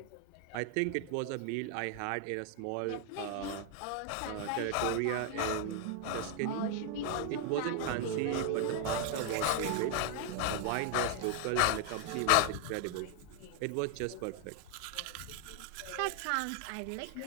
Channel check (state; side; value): different; both; correlation 0.00